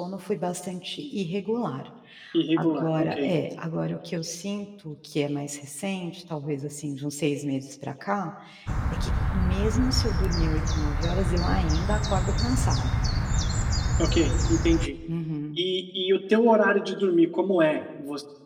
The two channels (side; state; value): both; identical; correlation 1.00